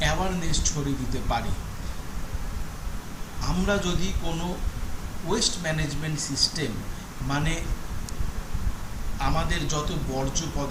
অ্যাওয়ারনেস ছড়িয়ে দিতে পারি। আমরা যদি কোনো ওয়েস্ট ম্যানেজমেন্ট সিস্টেম, মানে আমাদের যত বর্জ্য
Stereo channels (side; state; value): both; identical; correlation 1.00